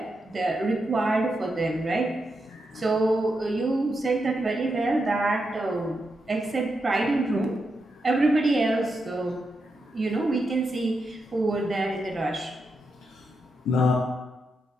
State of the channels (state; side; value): normal; both; correlation 0.85